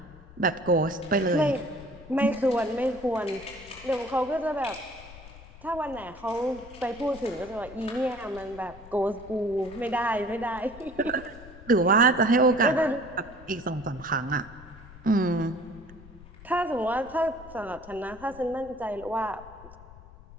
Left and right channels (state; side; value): noise; left; rumble, 19 dB below the sound